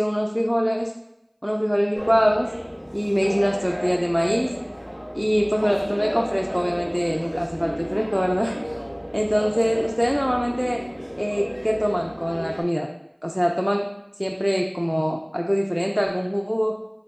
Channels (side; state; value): both; identical; correlation 1.00